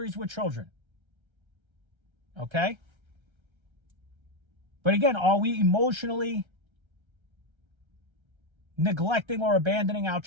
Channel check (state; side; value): late; left; 1.3 ms